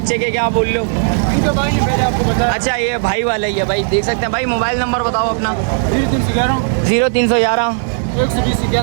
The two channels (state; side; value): silent; left; 69 dB below the other